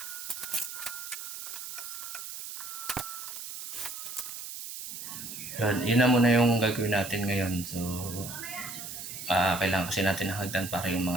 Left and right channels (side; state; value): right; noise; hiss, 8 dB below the sound